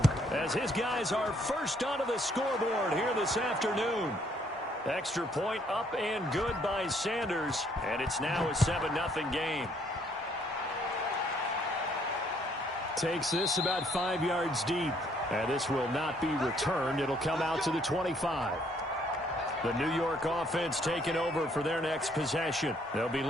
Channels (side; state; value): both; normal; correlation 0.66